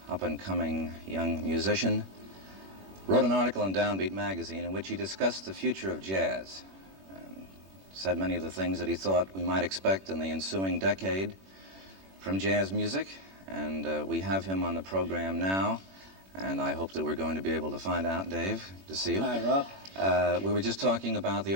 up-and-coming young musician, wrote an article in Downbeat magazine in which he discussed the future of jazz and said many of the things that he thought we might expect in the ensuing decade from jazz music. And we have him on the program now, and I hope that we're going to be able to find out. Dave, good to see you. Hi, Ralph. We were just talking about the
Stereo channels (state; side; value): late; left; 21 ms